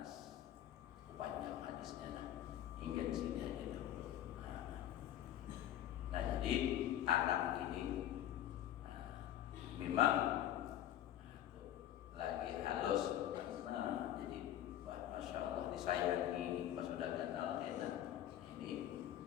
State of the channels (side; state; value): right; quieter; 12.0 dB